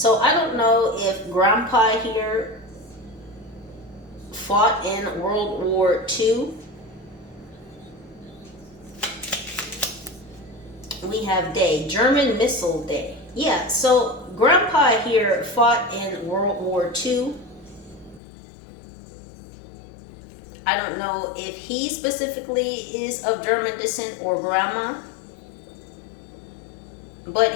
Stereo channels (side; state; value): right; drops out; at 18.2 s